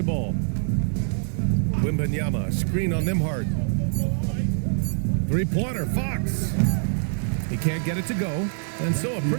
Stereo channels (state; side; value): silent; left; 62 dB below the other